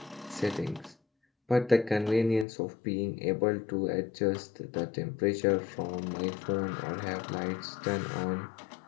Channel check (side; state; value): right; drops out; at 2.5 s